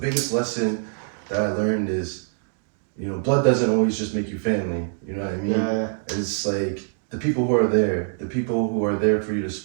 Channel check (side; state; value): left; silent; digital silence